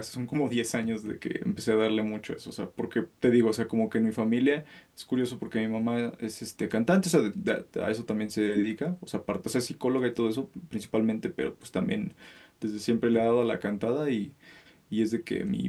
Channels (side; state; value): both; identical; correlation 1.00